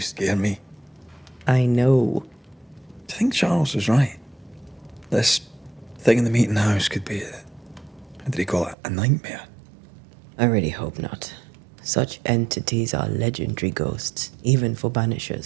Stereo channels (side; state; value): left; drops out; at 8.8 s